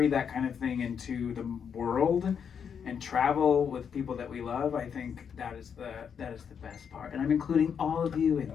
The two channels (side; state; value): right; quieter; 7.3 dB